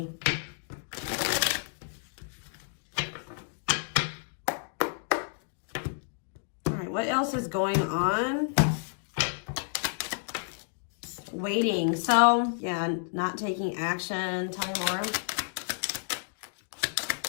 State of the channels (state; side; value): silent; right; digital silence